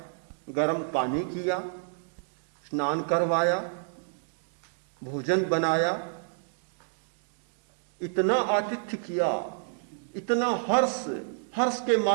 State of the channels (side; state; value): left; silent; digital silence